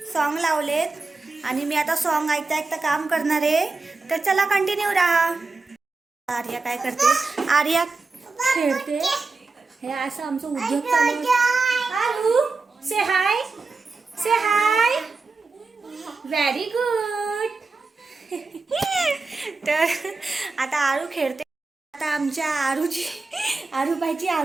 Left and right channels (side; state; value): left; quieter; 3.9 dB